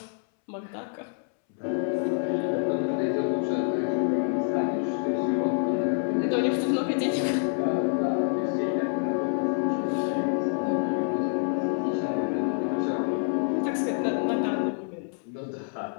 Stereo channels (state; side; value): silent; right; 60 dB below the other